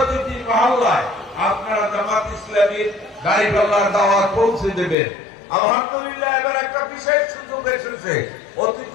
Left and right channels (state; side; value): drops out; right; at 5.0 s